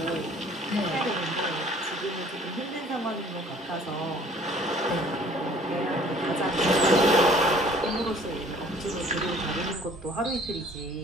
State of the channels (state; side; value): normal; both; correlation 0.54